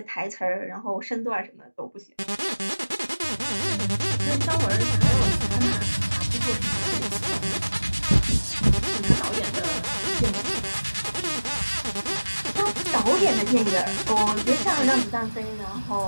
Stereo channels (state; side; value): inverted; both; correlation -1.00